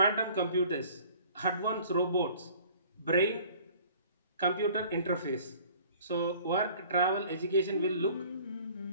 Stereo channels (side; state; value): both; inverted; correlation -0.51